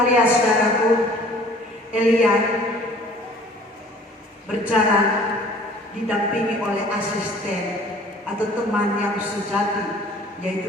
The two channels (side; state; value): both; normal; correlation 0.51